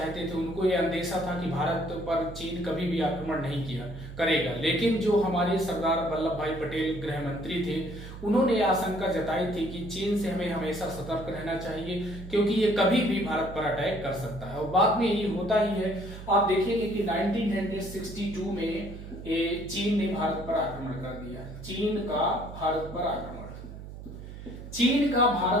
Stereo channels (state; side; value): noise; right; hum, 12 dB below the sound